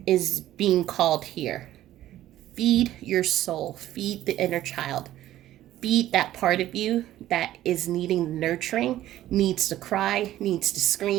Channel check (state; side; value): quieter; left; 13.7 dB